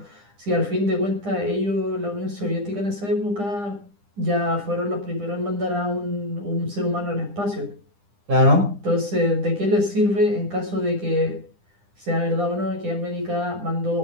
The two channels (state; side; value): late; left; 9.9 ms